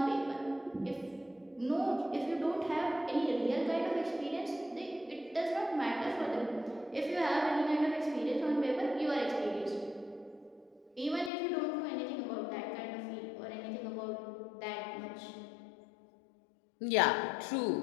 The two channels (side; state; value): right; drops out; at 11.3 s